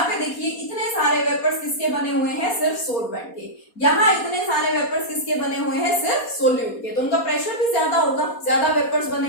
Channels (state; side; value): late; right; 4.2 ms